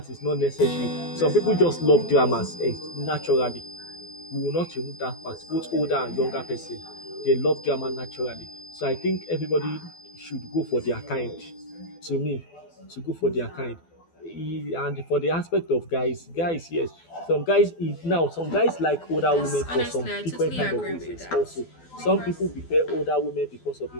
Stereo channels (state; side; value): late; right; 12 ms